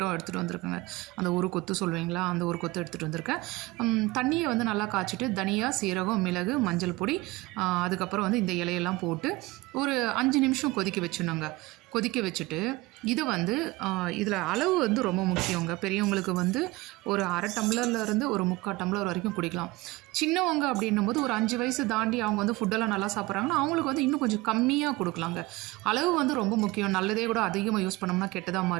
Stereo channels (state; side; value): quieter; left; 21.0 dB